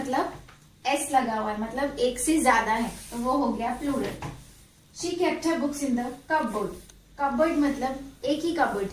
एस लगा हुआ है, मतलब एक से ज्यादा है, तो वो हो गया plural. She kept her books in the cupboard. Cupboard मतलब एक ही कपबोर्ड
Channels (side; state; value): both; identical; correlation 1.00